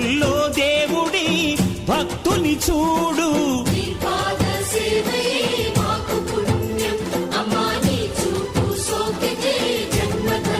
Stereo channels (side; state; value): both; identical; correlation 1.00